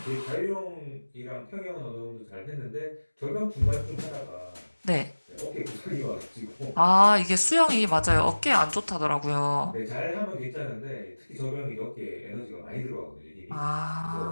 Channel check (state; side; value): inverted; both; correlation -1.00